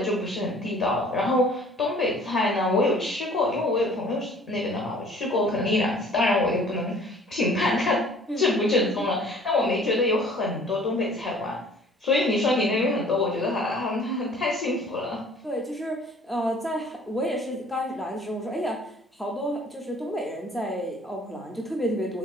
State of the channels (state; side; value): normal; both; correlation 0.52